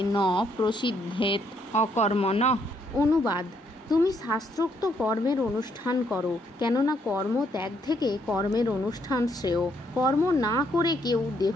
ন প্রসিদ্ধেত অকর্মণঃ। অনুবাদ: তুমি শাস্ত্রোক্ত কর্মের অনুষ্ঠান করো, কেননা কর্ম ত্যাগ থেকে কর্মের অনুষ্ঠান শ্রেয়। কর্ম না করে কেউ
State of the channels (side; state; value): both; normal; correlation 0.72